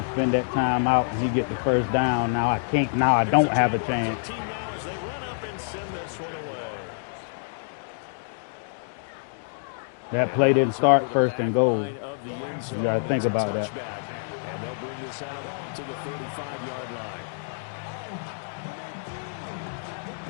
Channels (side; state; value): right; silent; digital silence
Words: spend that time out and he get the 1st down. Now I can't. Now I don't have a chance. Now as they run up and send this one away. That play didn't start 1st and goal. You got to think about that. And they'll bring this out to the 35-yard line.